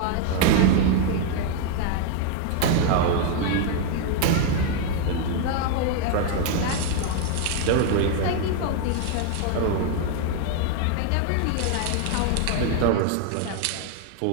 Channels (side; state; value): both; different; correlation 0.00